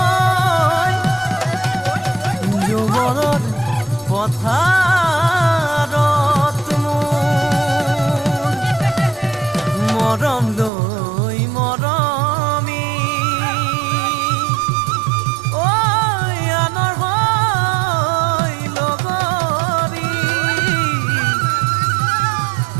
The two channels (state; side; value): drops out; left; at 10.7 s